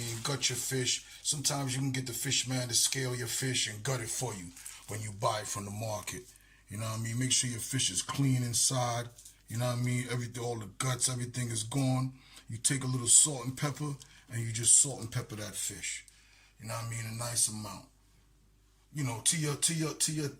Gut your fish. Sometimes you can get the fish man to scale your fish and gut it for you when you buy it from the market. You know what I mean? Make sure your fish is clean inside. You know what I mean? Everything, all the guts, everything is gone. You take a little salt and pepper, and you just salt and pepper that fish. You know what I mean? A nice amount. You know, to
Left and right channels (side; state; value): both; identical; correlation 1.00